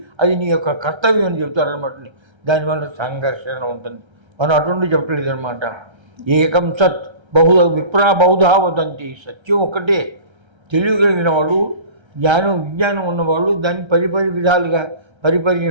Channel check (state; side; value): late; left; 1.3 ms